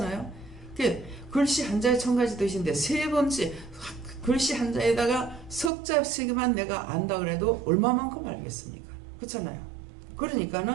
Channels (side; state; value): left; drops out; at 5.7 s